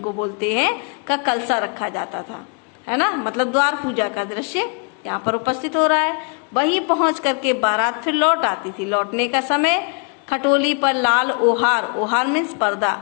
बोलते हैं, का कलसा रखा जाता था, है ना, मतलब द्वार पूजा का दृश्य यहाँ पर उपस्थित हो रहा है। वहीं पहुंच करके बारात फिर लौट आती थी। लौटने का समय खटोली पर लाल ओहार, ओहार मीन्स पर्दा,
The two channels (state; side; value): quieter; right; 38.3 dB